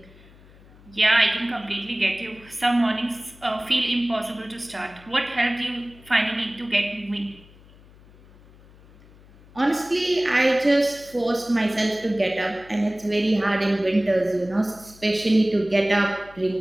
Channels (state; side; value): noise; left; hum, 24 dB below the sound